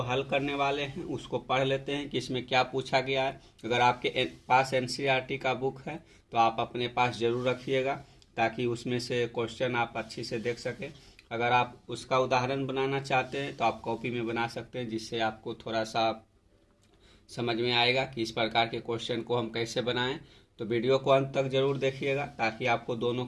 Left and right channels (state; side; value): identical; both; correlation 1.00